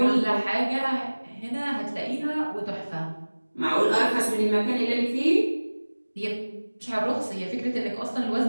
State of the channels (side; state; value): both; inverted; correlation -1.00